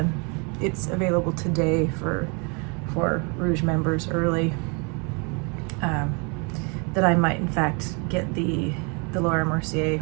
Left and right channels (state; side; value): quieter; left; 33.1 dB